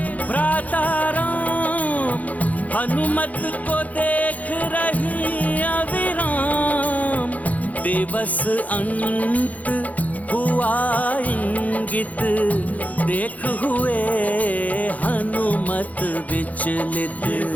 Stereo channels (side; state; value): right; late; 0.074 ms